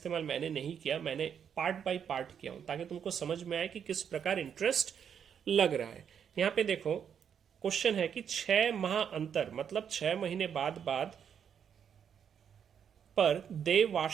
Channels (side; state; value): left; quieter; 8.0 dB